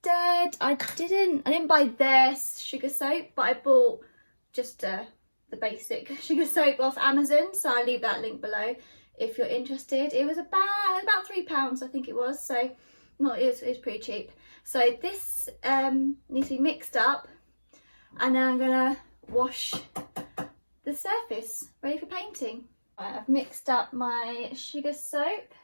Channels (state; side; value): inverted; both; correlation -1.00